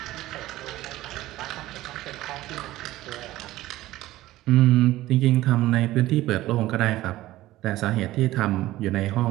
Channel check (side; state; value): left; quieter; 16.2 dB